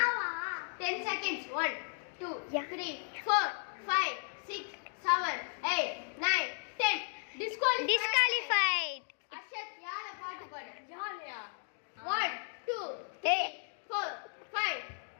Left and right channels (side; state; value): right; silent; 54 dB below the other